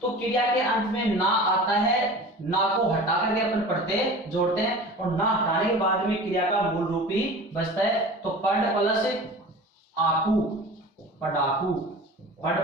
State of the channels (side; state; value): both; normal; correlation 0.38